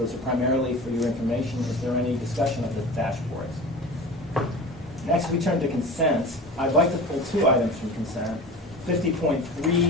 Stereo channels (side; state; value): both; normal; correlation 0.35